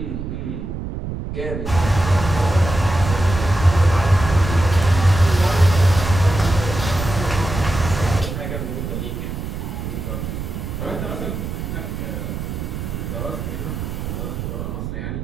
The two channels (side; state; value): right; noise; rumble, 5 dB below the sound